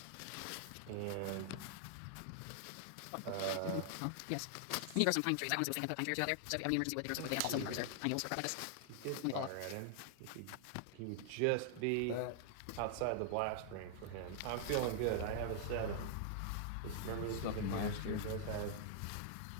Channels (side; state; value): both; different; correlation -0.01